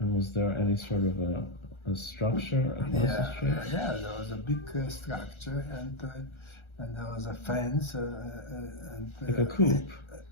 was there any sort of a structure across the street? Yeah, there was a big structure and there was a fence and like a coop.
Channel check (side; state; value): right; late; 1.3 ms